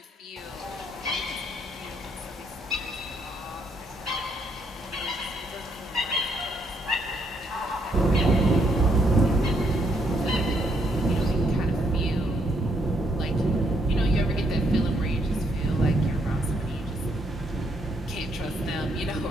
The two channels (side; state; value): both; normal; correlation 0.73